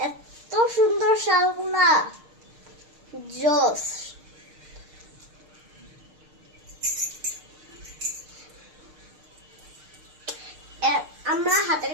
এত সুন্দর শালগুলা জোস। আমরা হাতের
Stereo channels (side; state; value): left; late; 6.6 ms